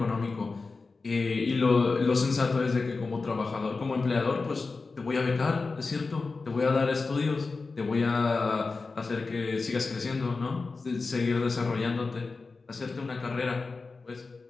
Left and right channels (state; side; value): quieter; right; 4.0 dB